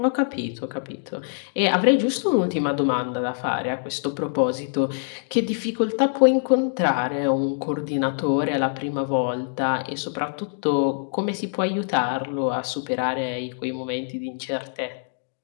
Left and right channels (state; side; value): silent; right; digital silence